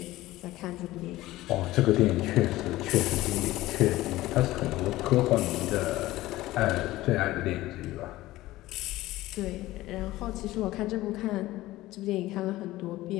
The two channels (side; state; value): right; quieter; 17.0 dB